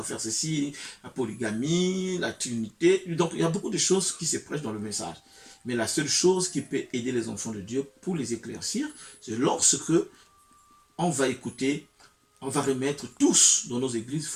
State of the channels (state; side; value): identical; both; correlation 1.00